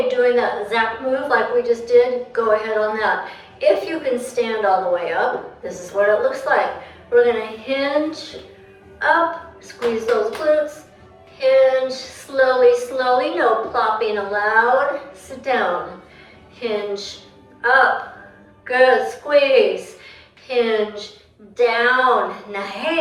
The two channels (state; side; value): identical; both; correlation 1.00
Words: doing that exact move like we just did, go ahead on that. If you can stand all the way up, this is what it looks like. We're gonna hinge, up, squeeze those glutes, hinge, slowly, slowly, no plopping allowed. Sit down, hinge, up, good, squeeze, hinge, down,